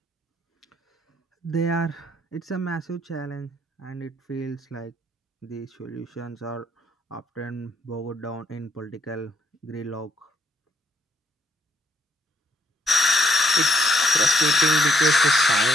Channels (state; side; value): normal; both; correlation 0.74